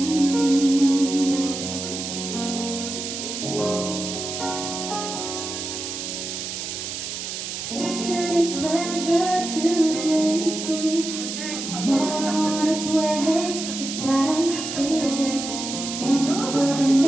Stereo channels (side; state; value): right; noise; hiss, 6 dB below the sound